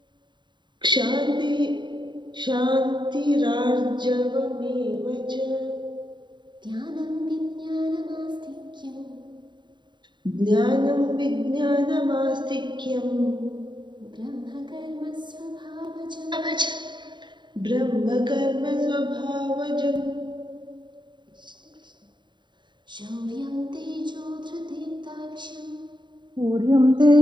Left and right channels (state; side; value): late; left; 0.22 ms